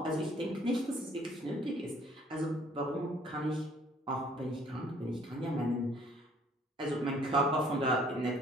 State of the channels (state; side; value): normal; both; correlation 0.59